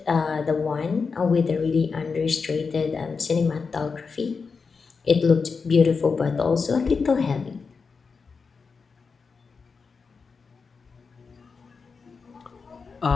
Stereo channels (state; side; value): quieter; right; 5.0 dB